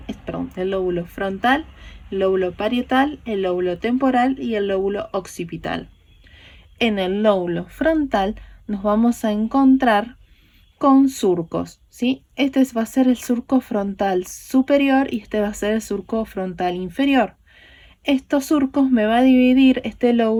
el lóbulo frontal, el lóbulo parietal, el lóbulo temporal y el lóbulo occipital. En el lóbulo frontal nos vamos a encontrar con surcos, ¿sí? Este va a ser el surco frontal superior y este va a ser el surco frontal inferior. Estos surcos me va a dividir este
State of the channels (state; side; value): identical; both; correlation 1.00